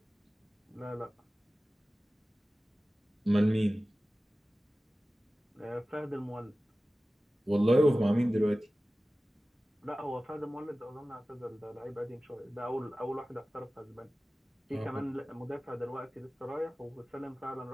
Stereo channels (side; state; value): both; normal; correlation 0.96